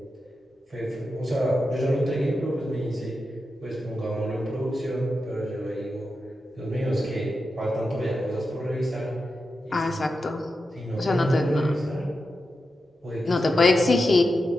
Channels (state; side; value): normal; both; correlation 0.89